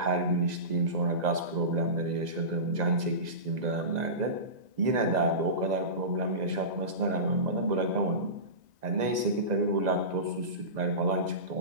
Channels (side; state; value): left; late; 2.0 ms